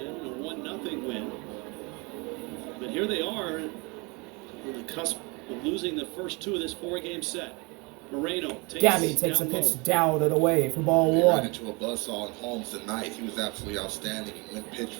1-0 win. But here they are on the cusp of losing the first 2 of this 4-game set. Moreno takes a pitch down and away for ball 1. Ran into a buzzsaw in Holmes tonight. He was absolutely outstanding. He went pitch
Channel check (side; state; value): left; quieter; 28.2 dB